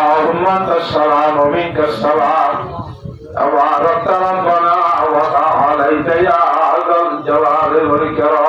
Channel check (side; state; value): both; identical; correlation 1.00